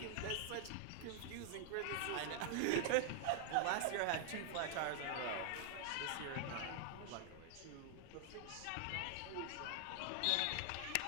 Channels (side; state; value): both; different; correlation 0.00